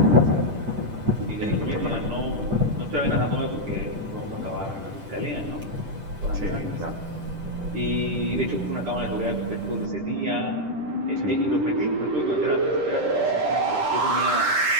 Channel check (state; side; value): late; left; 10 ms